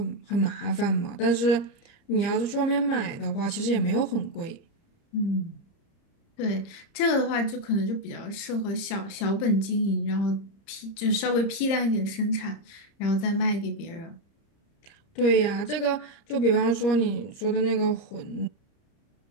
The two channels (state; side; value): late; right; 30 ms